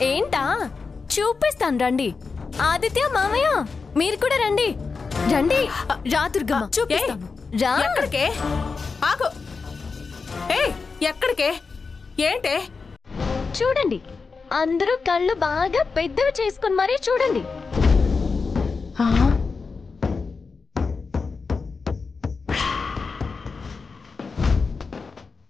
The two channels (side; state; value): right; quieter; 4.7 dB